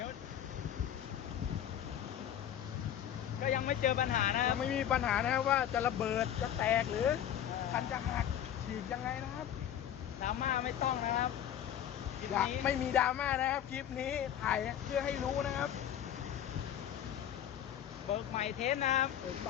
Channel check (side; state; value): right; quieter; 10.3 dB